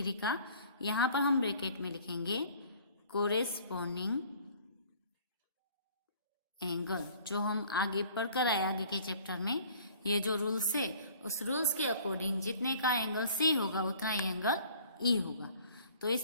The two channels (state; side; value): inverted; both; correlation -0.53